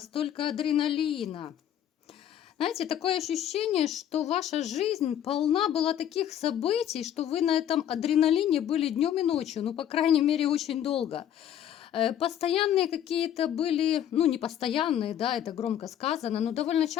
адреналина. Знаете, такое ощущение, что ваша жизнь полна была таких событий, что вы на этом адреналине были днем и ночью, ну, по крайней мере, очень долго. Постоянные какие-то были, ну, не постоянные, да, это громко сказано, но довольно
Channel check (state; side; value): quieter; right; 10.3 dB